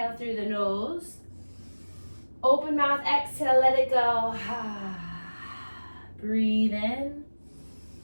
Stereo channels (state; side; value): inverted; both; correlation -1.00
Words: through the nose. Open mouth, exhale, let it go. Breathe in